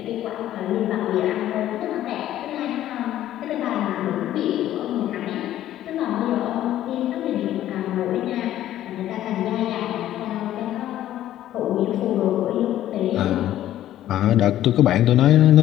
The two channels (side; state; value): right; quieter; 12.8 dB